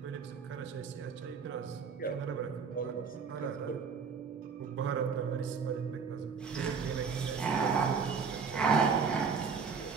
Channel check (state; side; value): quieter; left; 5.7 dB